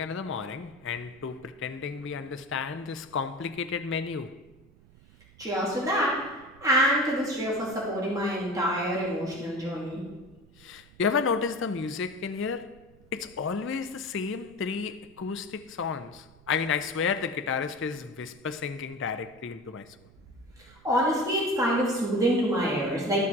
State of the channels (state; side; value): noise; right; rumble, 25 dB below the sound